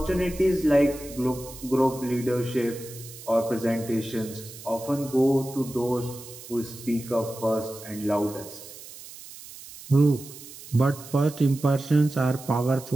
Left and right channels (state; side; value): noise; right; hiss, 16 dB below the sound